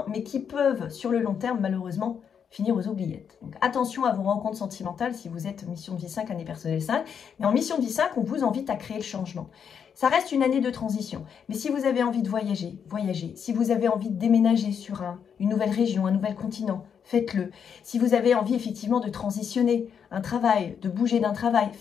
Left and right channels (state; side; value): quieter; right; 7.4 dB